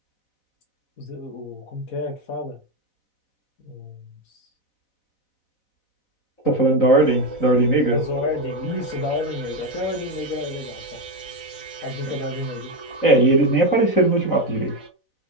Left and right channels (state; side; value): late; right; 4.0 ms